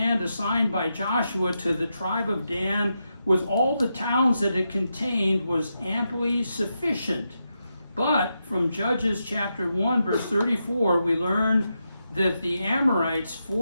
assigned by Joshua to the tribe of Dan with all the towns that it contained was amply sufficient. But from Judges chapter 1, verse 34, we learn that the Amorites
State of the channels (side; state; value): both; inverted; correlation -0.86